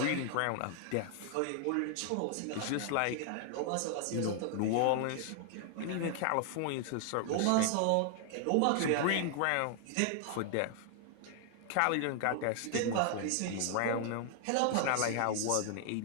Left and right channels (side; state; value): both; different; correlation 0.00